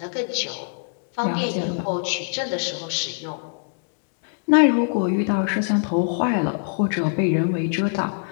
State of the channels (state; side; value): silent; right; digital silence